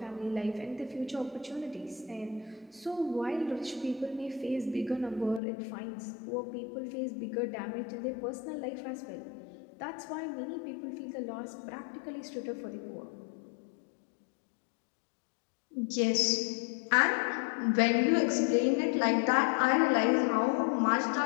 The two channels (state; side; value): drops out; right; at 5.4 s